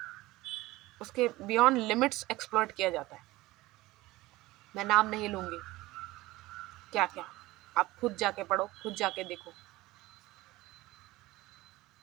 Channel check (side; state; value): left; quieter; 18.9 dB